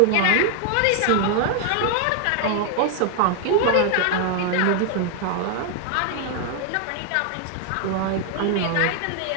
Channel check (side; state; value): both; different; correlation 0.00